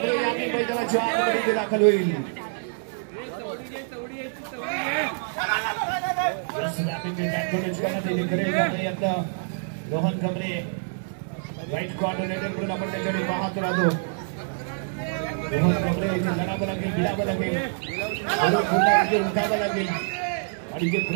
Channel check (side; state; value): left; silent; 61 dB below the other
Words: यांनी मैदानाच्या आतमध्ये दाखल होईल. रोहन गांगरे राईट कॉर्नर आपण त्याच्याकडे पाहत राहतो. रोहन गांगरे लढावं लागेल भिडावं लागेल उठावं लागेल आणि जे